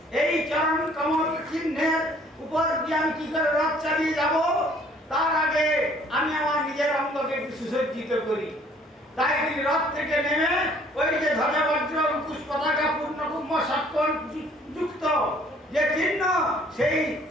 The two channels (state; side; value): normal; both; correlation 0.58